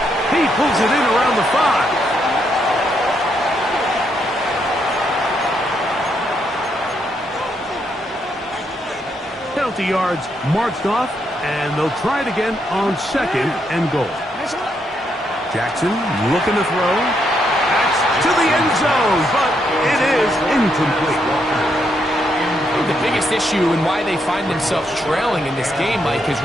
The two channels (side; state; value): both; normal; correlation 0.77